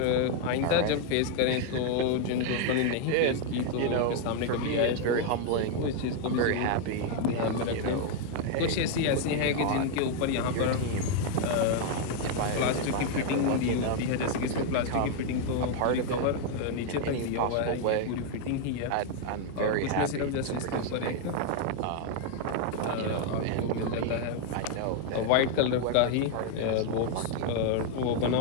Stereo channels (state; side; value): different; both; correlation 0.00